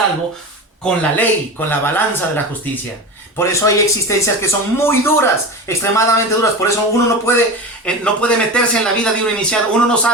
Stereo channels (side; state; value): both; normal; correlation 0.27